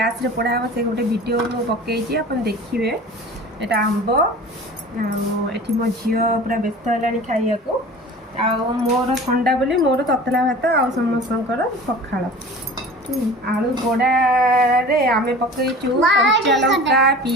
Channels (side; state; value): both; normal; correlation 0.40